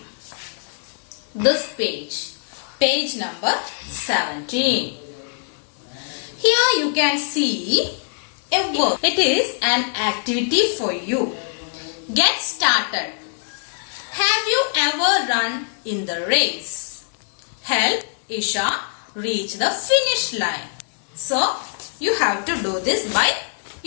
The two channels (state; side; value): silent; right; digital silence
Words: This page number 17. Here you can see a work. It is an activity for you. Get started. Have you ever run in the race? Help Isha reach the finish line. So you have to do this by